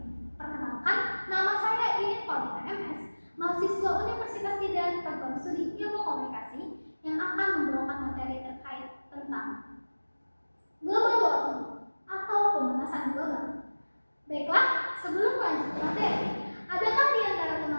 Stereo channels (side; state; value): both; inverted; correlation -1.00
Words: Perkenalkan, nama saya Iin Paulina MS, mahasiswa Universitas Tidar Program Studi Ilmu Komunikasi yang akan membawakan materi terkait tentang global warming atau pemanasan global. Baiklah, sebelum lanjut ke materi, adakah di antara